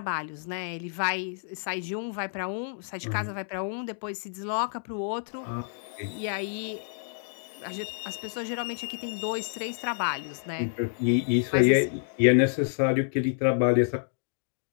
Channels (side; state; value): right; silent; digital silence